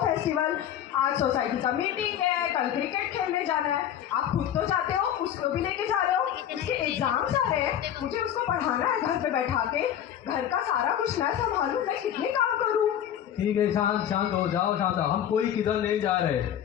फेस्टिवल. आज सोसाइटी का मीटिंग है, कल क्रिकेट खेलने जाना है. आप खुद तो जाते हो, उसको भी लेके जा रहे हो. उसके एग्जाम्स आ रहे हैं, मुझे उसको पढ़ाना है घर पे बैठा के. घर का सारा कुछ मैं संभालूं, मैं कितने काम करूं. ठीक है, शांत हो जाओ, शांत हो. हम कोई किधर नहीं जा रहे.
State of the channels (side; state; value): right; quieter; 10.2 dB